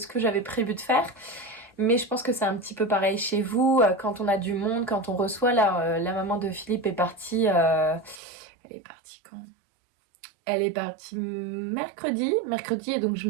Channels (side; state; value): left; drops out; at 8.2 s